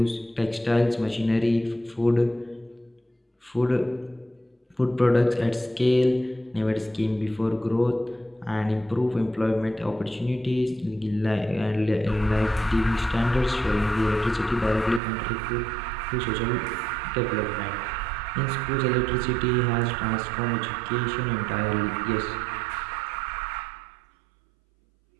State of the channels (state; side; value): drops out; left; at 15.0 s